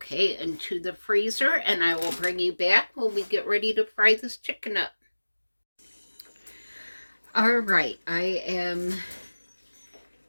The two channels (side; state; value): both; inverted; correlation -1.00